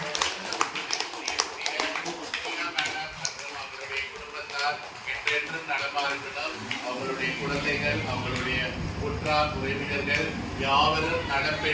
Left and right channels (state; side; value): identical; both; correlation 1.00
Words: அவருடைய குடும்பத்தார் என்றென்றும் நலமா இருக்கணும். அவருடைய குழந்தைகள், அவருடைய உற்றார் உறவினர்கள் யாவரும் நலம்